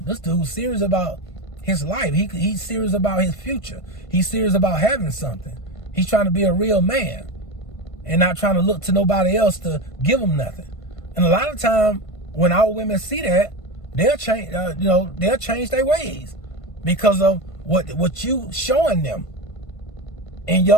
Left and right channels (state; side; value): late; right; 1.5 ms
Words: this dude's serious about his life. He's serious about his future. He's serious about having something. He's trying to be a real man and not trying to look to nobody else to give him nothing. And a lot of time when our women see that, they'll change, they'll change their ways because of what you showing them in